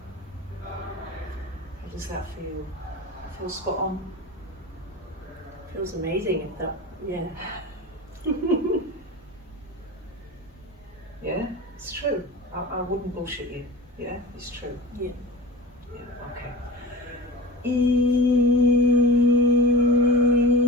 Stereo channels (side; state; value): both; normal; correlation 0.32